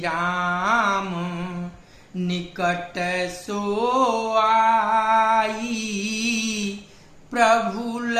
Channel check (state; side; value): identical; both; correlation 1.00